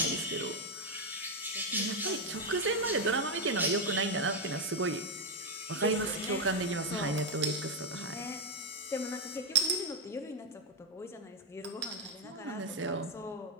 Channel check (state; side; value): normal; both; correlation 0.04